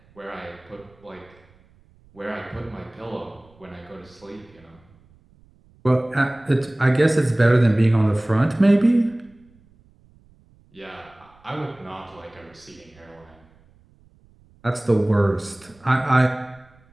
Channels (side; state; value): right; noise; rumble, 30 dB below the sound